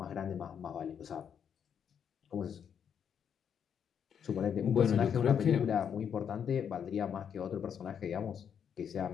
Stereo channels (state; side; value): quieter; right; 7.9 dB